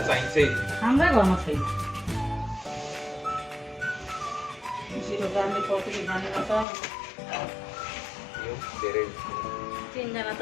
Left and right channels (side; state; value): right; drops out; at 6.7 s